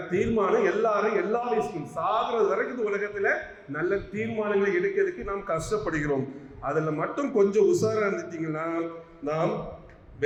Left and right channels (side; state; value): both; identical; correlation 1.00